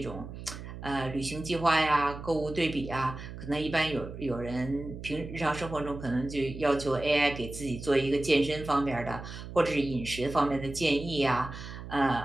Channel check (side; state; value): right; noise; hum, 11 dB below the sound